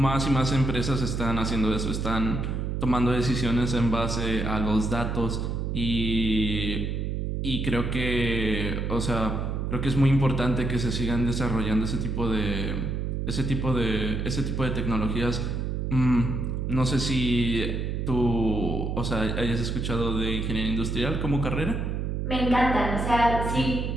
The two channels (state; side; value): noise; right; hum, 1 dB below the sound